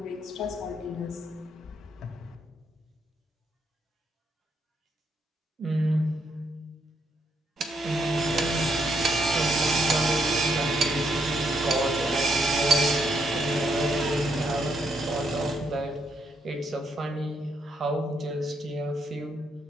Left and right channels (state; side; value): normal; both; correlation 0.76